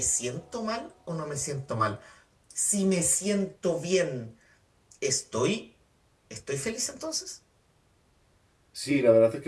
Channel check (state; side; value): identical; both; correlation 1.00